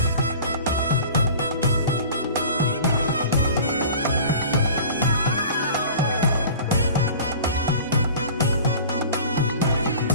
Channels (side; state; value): both; inverted; correlation -0.41